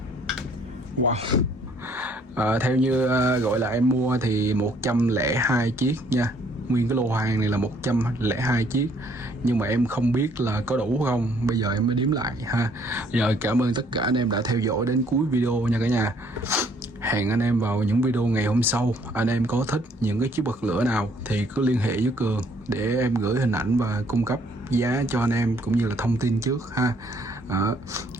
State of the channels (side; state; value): both; normal; correlation 0.63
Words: Wow. Theo như gọi là em mua thì 102 chiếc nha. Nguyên cái lô hàng này là 102 chiếc. Nhưng mà em không biết là có đủ không. Bây giờ em mới đếm lại ha. Rồi cảm ơn tất cả anh em đã theo dõi đến cuối video nha cả nhà. Hẹn anh em vào những video ngày hôm sau. Anh em có thích những cái chiếc bật lửa nào thì cứ liên hệ với Cường để em gửi hình ảnh và cung cấp giá cho anh em cũng như là thông tin trước ha.